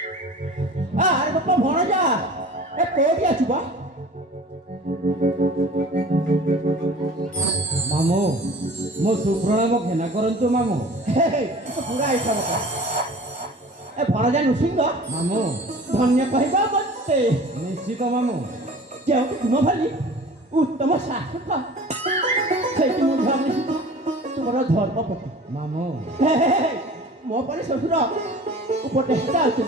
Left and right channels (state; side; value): normal; both; correlation 0.43